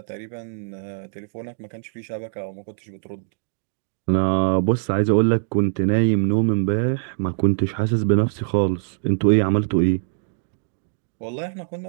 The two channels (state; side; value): silent; left; digital silence